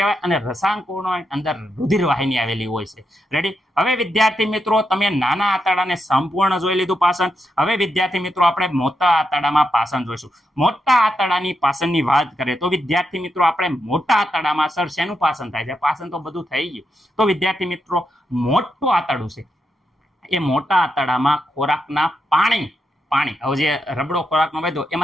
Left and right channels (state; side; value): normal; both; correlation 0.84